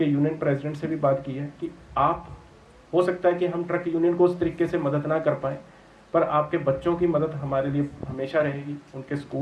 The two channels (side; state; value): both; identical; correlation 1.00